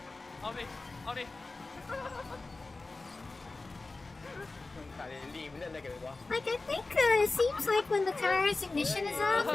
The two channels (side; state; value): right; quieter; 3.5 dB